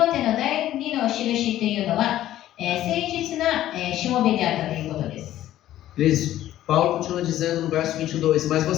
テの第2の印というのは、誠実な、しもべであったということです。 Paulo continua dizendo no verso 22, mas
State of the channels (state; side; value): quieter; right; 13.3 dB